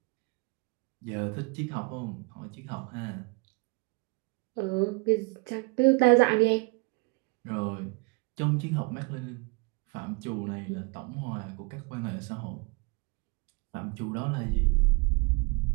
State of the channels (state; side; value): quieter; left; 28.9 dB